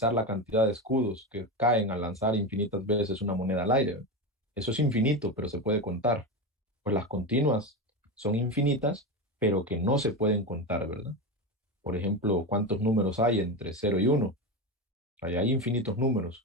la cantidad de escudos que caen al lanzar infinitas veces una moneda al aire. Eso es infinito, pero se puede contar. Pues las continuas son infinitas, pero que no se pueden contar, ¿verdad? Por ejemplo, ¿cuántos números hay entre 0 y 1? Hay infinitos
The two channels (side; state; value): both; normal; correlation 0.18